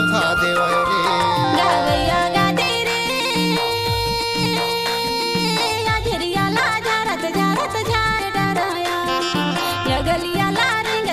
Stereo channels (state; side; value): identical; both; correlation 1.00